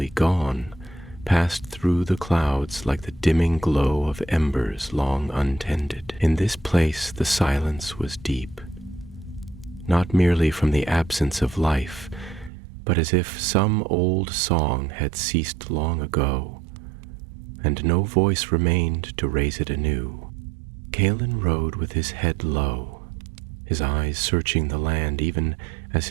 gone, passed through the clouds like the dimming glow of embers long untended. In this place the silence was deep, not merely from the absence of life, but as if some old song had ceased long ago, and no voice remained to raise it anew. Calin rode with his head low, his eyes searching the land even as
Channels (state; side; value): drops out; left; at 12.5 s